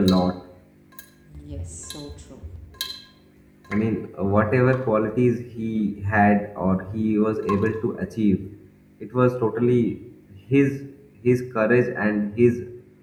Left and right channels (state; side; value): identical; both; correlation 1.00